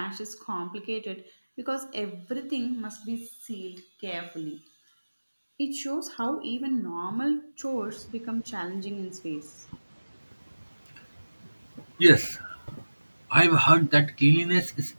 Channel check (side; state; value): both; inverted; correlation -1.00